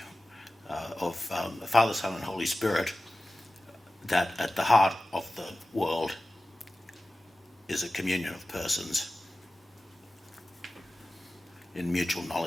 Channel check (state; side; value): normal; both; correlation 0.96